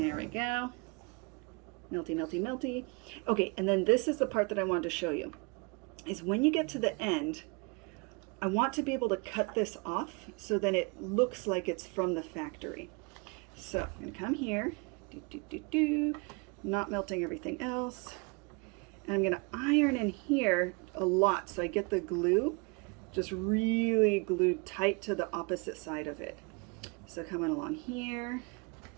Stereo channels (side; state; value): left; quieter; 31.2 dB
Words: we go. Melty, melty, melty. Okay, and then this is the part that I wanted to show you. Is when you get to the end, I want to be able to cut this off so then it looks like it's from the factory. So I'm going to come here, not melting everything else. And I'm going to iron in here a lot so I get the glue just really glued tight to the opposite side of it. So coming along here,